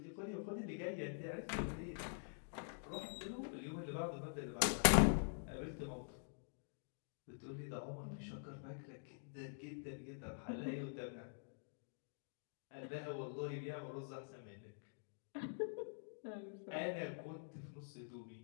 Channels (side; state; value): right; silent; digital silence